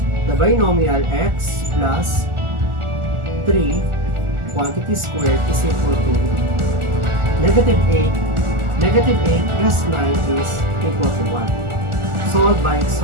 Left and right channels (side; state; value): left; late; 1.4 ms